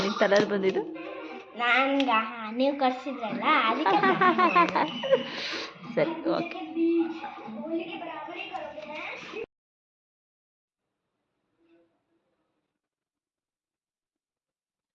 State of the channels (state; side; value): identical; both; correlation 1.00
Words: ತಲೆಯಲ್ಲಿ ಬಂದಿದ್ದು? ನೀವು ಕರ್ಸಿದ್ರಲ್ಲ ಸರಿ, ಓಕೆ.